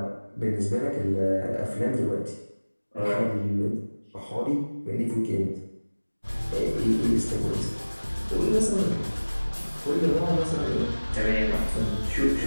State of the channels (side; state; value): both; inverted; correlation -1.00